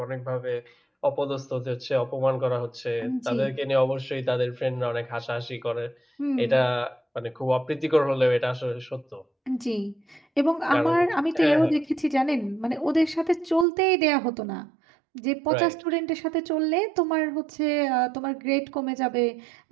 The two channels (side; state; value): left; drops out; at 13.7 s